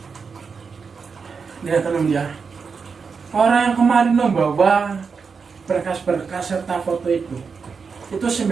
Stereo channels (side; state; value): left; quieter; 5.4 dB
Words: Lihat teman ya. Orang yang kemarin membawa berkas-berkas serta foto itu